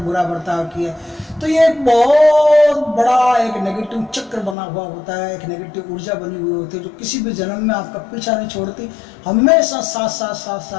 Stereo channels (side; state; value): right; drops out; at 4.5 s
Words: बर्ताव किया है। तो ये एक बहुत बड़ा एक नेगेटिव चक्र बना हुआ होता है, एक नेगेटिव ऊर्जा बनी हुई होती है जो किसी भी जन्म में आपका पीछा नहीं छोड़ती, हमेशा साथ साथ साथ